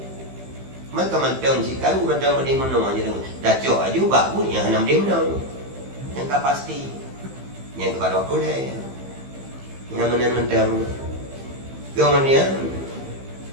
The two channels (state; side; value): late; left; 15 ms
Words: maka mantang si kalu mantang benda mana aja dah cok aja bagus yang hana dia menang yang tak pasti yang kepada boleh yang mana mantang kemudian